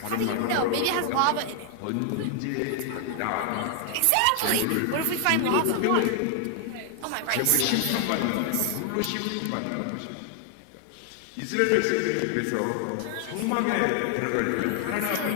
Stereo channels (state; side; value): different; both; correlation 0.00